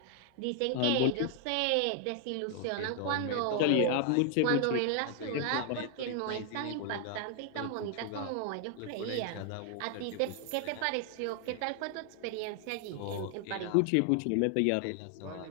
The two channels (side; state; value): both; different; correlation 0.00